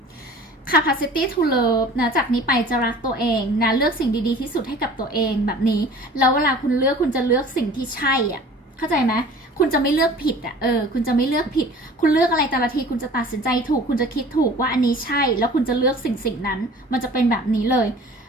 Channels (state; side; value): normal; both; correlation 0.45